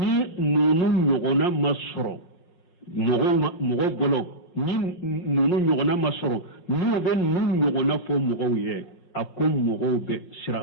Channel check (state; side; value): late; right; 5.5 ms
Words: nunu nyogona masoro mogo bolo ni nunu nyogona masoro nu be nu nyogona fo mogo ye akom mogo be sira